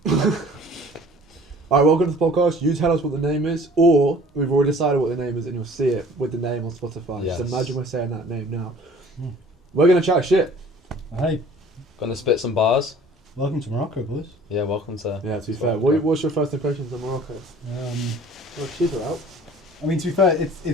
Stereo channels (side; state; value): both; normal; correlation 0.49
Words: Alright, welcome to the podcast. You tell us what the name is, or we've already decided what the name is and you'll see it with the name on Spotify. Yes. Just imagine we're saying that name now. Mm. We're going to chat shit. Hey, Gonna spit some bars. welcome to Morocco, boys. Yeah, welcome to. Yeah, to be It's fair. Morocco. What's your first impressions of Morocco? Well, cheaper out. I mean, to be fair,